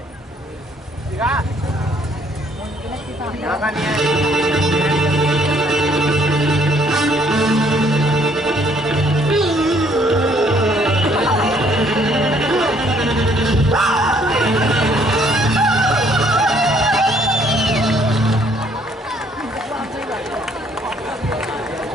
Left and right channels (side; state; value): both; normal; correlation 0.64